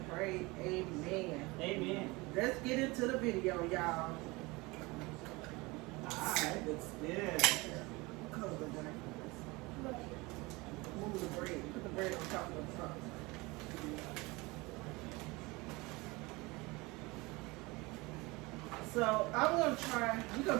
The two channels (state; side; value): quieter; left; 23.8 dB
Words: pray. Amen. Amen. Let's get into the video, y'all. Alright, looks good. Close the bread. Move the bread. Put the bread on top of the sauce. So we're gonna